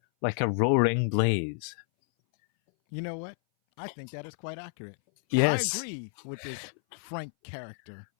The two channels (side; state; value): right; silent; 58 dB below the other